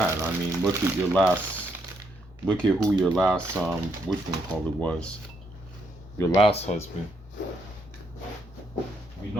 I mean, look at who your last which one called it was. Your last husband. We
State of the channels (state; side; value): normal; both; correlation 0.75